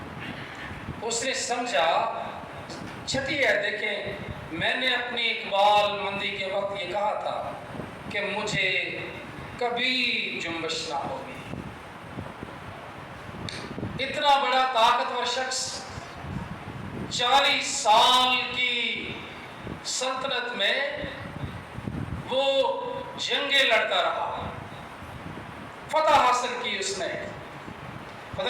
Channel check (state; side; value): identical; both; correlation 1.00